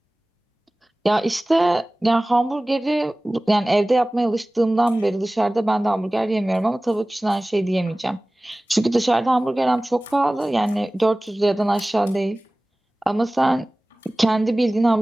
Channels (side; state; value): both; normal; correlation 0.98